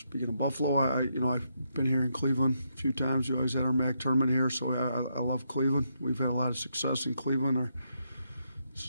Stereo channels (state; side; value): inverted; both; correlation -0.79